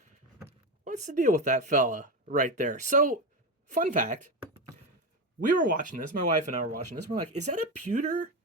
what's the deal with that fella right there? So, fun fact, we were watching this, my wife and I were watching this. We're like, is that a pewter?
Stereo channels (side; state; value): both; normal; correlation 0.15